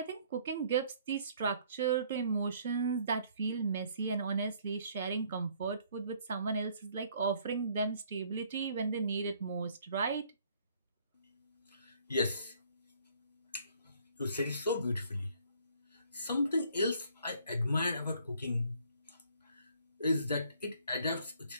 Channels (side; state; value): both; inverted; correlation -0.62